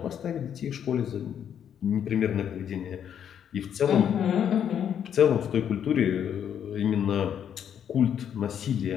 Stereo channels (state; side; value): quieter; right; 8.9 dB